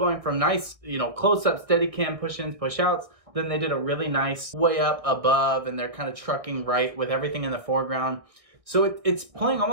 from nice, close-up, steady cam push-ins, push-outs. Then they did a really nice way up above, and they're kind of trucking right with everything in the foreground. So it's playing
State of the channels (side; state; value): left; late; 1.6 ms